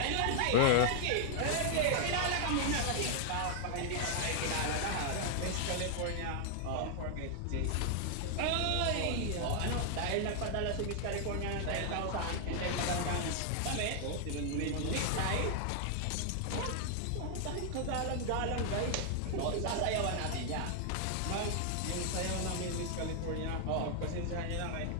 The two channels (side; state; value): both; different; correlation 0.00